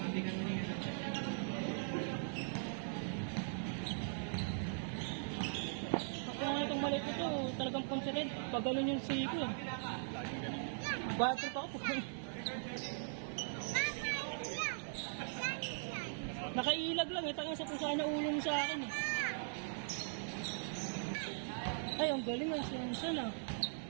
Ako nga itong maliit ito, talagang considered. Pag ganun yung siko eh. Batrip ako. Nakailag lang eh, tangang sa kung saan naulong sa akin eh. Ay, ang galing ang siyansan ah.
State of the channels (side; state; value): left; silent; digital silence